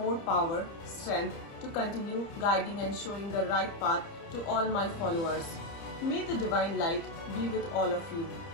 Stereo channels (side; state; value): right; late; 30 ms